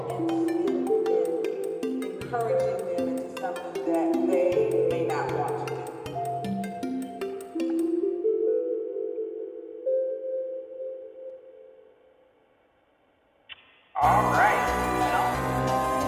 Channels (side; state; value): both; identical; correlation 1.00